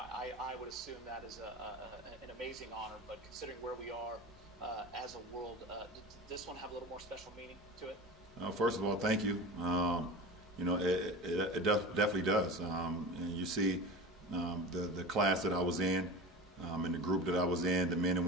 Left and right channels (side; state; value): both; normal; correlation 0.31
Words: would assume that is an amazing honor, but considering where we are as a world, does this one have a little more special meaning to it? First of all, thank you. It definitely does. And you see the class that I was in, and the group that I was in, the men and